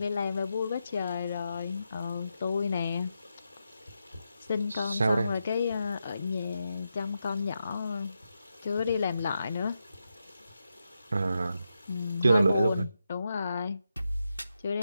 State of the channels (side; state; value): both; inverted; correlation -0.86